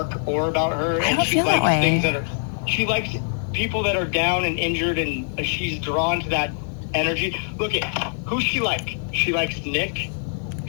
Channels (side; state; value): right; silent; 63 dB below the other